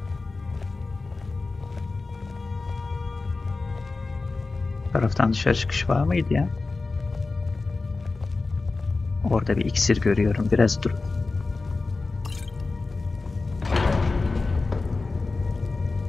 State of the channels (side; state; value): right; quieter; 3.7 dB